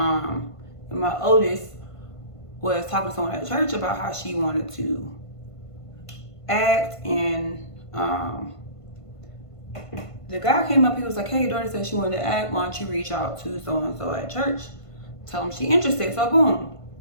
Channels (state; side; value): late; right; 1.5 ms